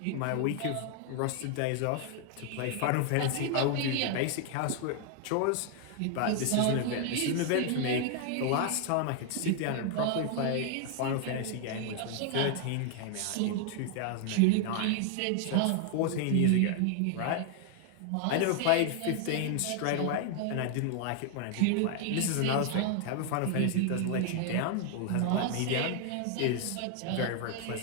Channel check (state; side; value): different; both; correlation 0.00